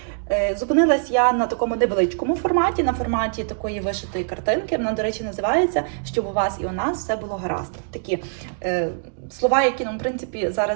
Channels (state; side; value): silent; left; digital silence